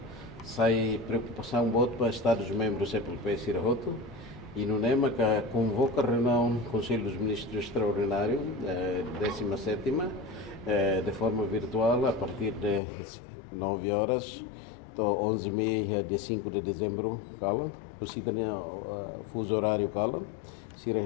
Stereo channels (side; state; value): right; drops out; at 12.8 s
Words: sai preocupação muito para Estados-membros CEPAL-P Sirahoto e no NEMA que convoca a reunião do Conselho dos Ministros Extraordinário 17ª de forma virtual a partir de 9 horas até 11h30 dia 5 de dezembro cala você tem fuso horário cala se